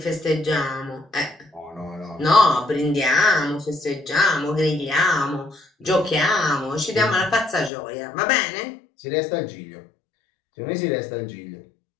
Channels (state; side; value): drops out; right; at 7.7 s